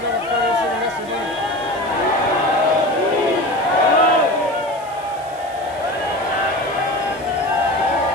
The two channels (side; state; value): right; noise; hiss, 23 dB below the sound